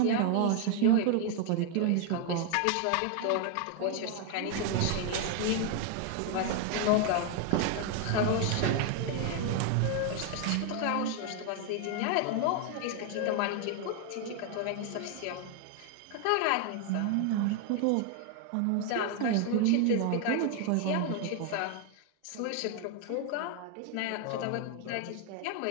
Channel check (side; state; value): both; different; correlation 0.01